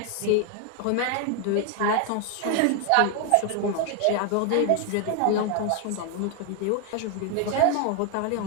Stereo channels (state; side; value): different; both; correlation 0.01